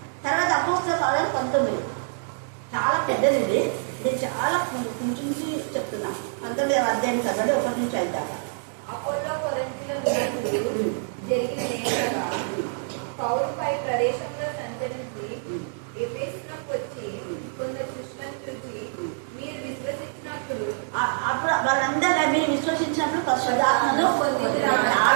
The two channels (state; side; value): silent; left; digital silence